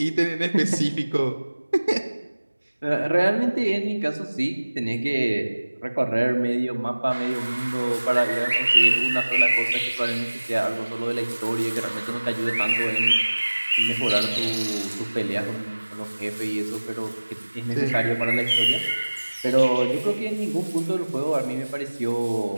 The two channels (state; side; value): inverted; both; correlation -1.00